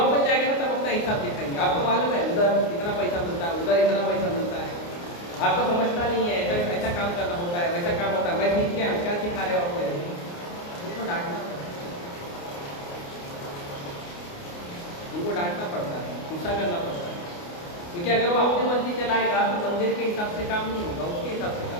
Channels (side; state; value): right; late; 29 ms